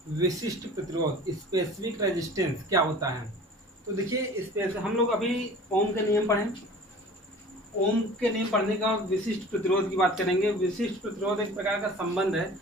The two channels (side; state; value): both; normal; correlation 0.43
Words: विशिष्ट प्रतिरोध, स्पेसिफिक रेजिस्टेंस क्या होता है। तो देखिए हम लोग अभी ओम के नियम पढ़ें, ओम के नियम पढ़ने का विशिष्ट प्रतिरोध की बात करेंगे। विशिष्ट प्रतिरोध एक प्रकार का संबंध है,